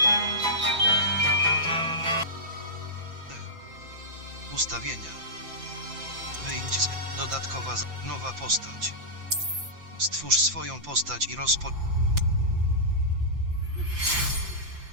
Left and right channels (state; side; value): late; left; 5.8 ms